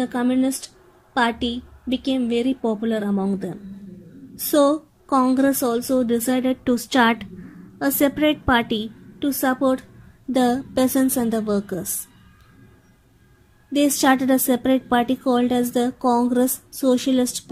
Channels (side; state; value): both; identical; correlation 1.00